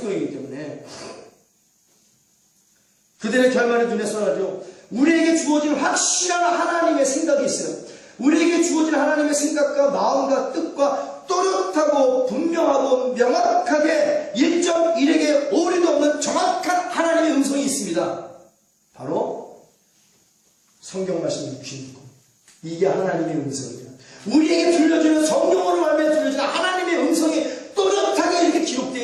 때문에. 그들의 결말이 눈에 선하죠. 우리에게 주어진 확실한 하나님의 생각이 있어요. 우리에게 주어진 하나님의 생각과 마음과 뜻과 또렷하고 분명하고 명확하게 1.1에게 오류도 없는 정확한 하나님의 음성이 있습니다. 바로 성경 말씀 66권. 이게 하나님의 음성이에요. 우리에게 들려주는 성경으로 말미암아 들려주는 하나님의 음성이 또렷하게 이렇게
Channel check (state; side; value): identical; both; correlation 1.00